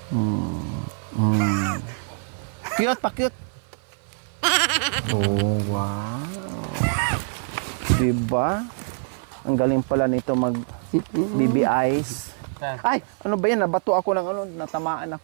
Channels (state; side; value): silent; left; 55 dB below the other